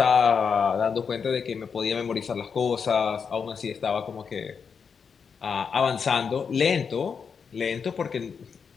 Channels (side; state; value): right; quieter; 6.2 dB